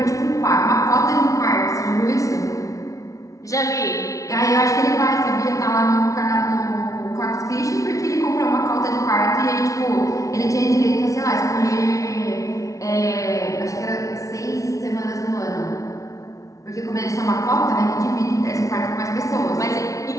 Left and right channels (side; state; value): right; late; 0.16 ms